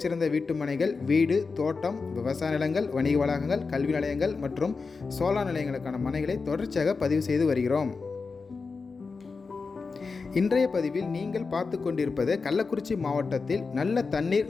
வீட்டுமனைகள், வீடு, தோட்டம், விவசாய நிலங்கள், வணிக வளாகங்கள், கல்வி நிலையங்கள் மற்றும் சோலார் நிலையங்களுக்கான மனைகளை தொடர்ச்சியாக பதிவு செய்து வருகிறோம். இன்றைய பதிவில் நீங்கள் பார்த்து கொண்டிருப்பது கள்ளக்குறிச்சி மாவட்டத்தில் நல்ல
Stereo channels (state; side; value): quieter; right; 4.5 dB